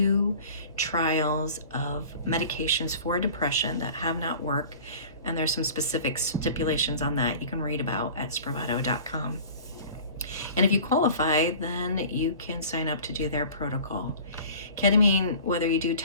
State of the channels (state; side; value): inverted; both; correlation -0.43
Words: trials of medications for depression that have not worked, and there's some specific stipulations on that you can read about at spravato.com. And if you qualify, then you can sign up to do their protocol. Ketamine, whether you do